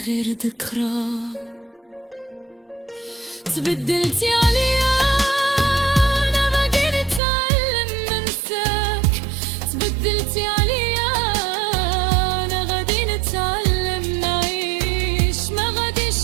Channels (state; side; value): drops out; left; at 7.2 s